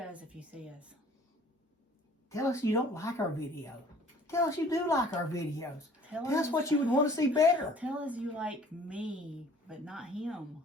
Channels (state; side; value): normal; both; correlation 0.52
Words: if you see us. Tell us you don't like our video. Tell us you do like our videos. Tell us what you would want to see better. Tell us you like me, but not him.